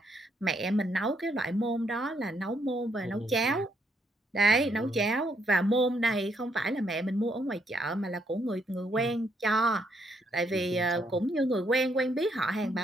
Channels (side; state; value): both; normal; correlation 0.74